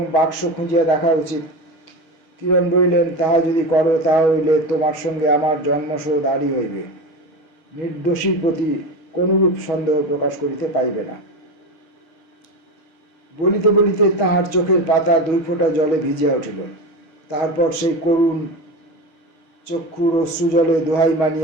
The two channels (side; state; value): right; late; 6.3 ms